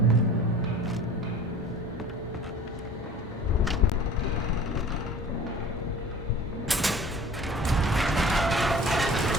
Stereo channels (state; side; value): normal; both; correlation 0.44